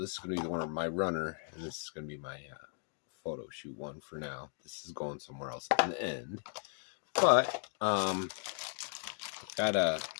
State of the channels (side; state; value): right; silent; 54 dB below the other